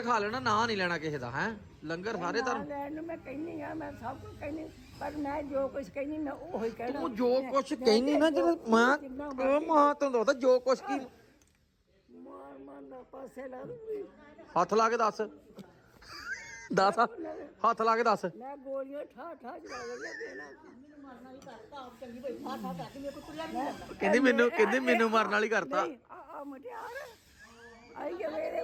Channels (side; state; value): both; identical; correlation 1.00